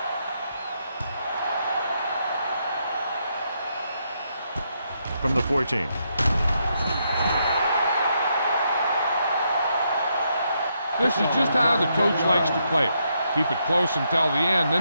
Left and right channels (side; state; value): both; inverted; correlation -0.78